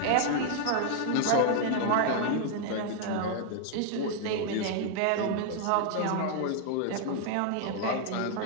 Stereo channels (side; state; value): both; different; correlation 0.00